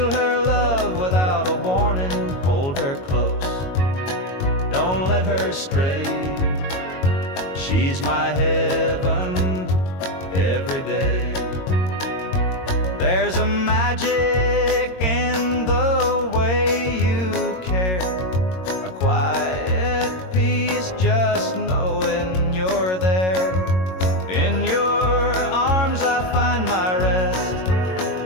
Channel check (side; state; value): right; late; 22 ms